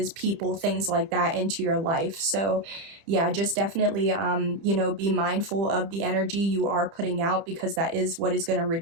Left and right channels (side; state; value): left; late; 30 ms